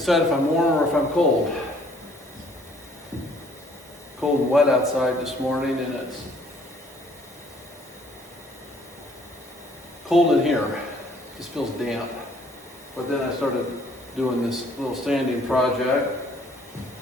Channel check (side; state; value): both; normal; correlation 0.61